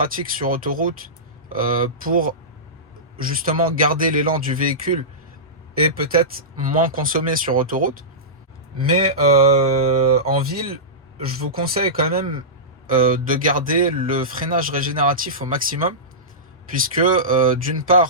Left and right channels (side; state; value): both; normal; correlation -0.18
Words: sur autoroute pour justement garder l'élan du véhicule et peut-être moins consommer sur autoroute. Mais en ville, je vous conseille quand même de garder le freinage régénératif au maximum puisque d'une